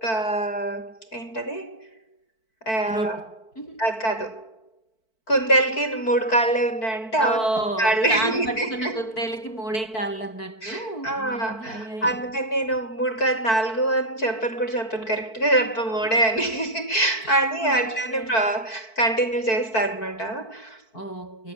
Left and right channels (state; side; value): late; right; 4.5 ms